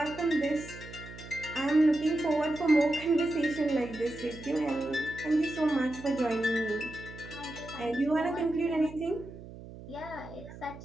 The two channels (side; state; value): right; noise; hum, 15 dB below the sound